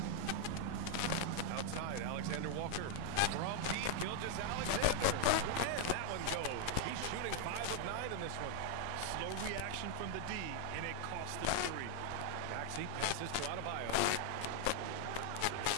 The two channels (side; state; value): both; different; correlation 0.00